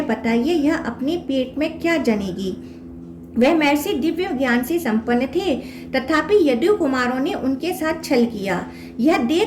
बताइए यह अपने पेट में क्या जनेगी? वह महर्षि दिव्य ज्ञान से संपन्न थे, तथापि यदु कुमारों ने उनके साथ छल किया। यह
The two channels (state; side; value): identical; both; correlation 1.00